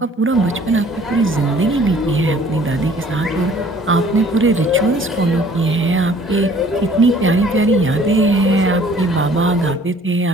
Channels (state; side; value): normal; both; correlation 0.55